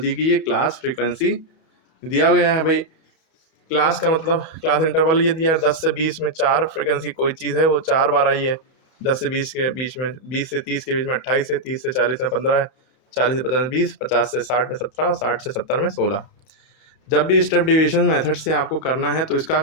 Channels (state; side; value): late; right; 31 ms